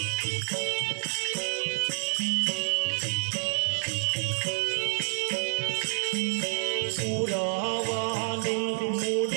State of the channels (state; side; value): silent; left; digital silence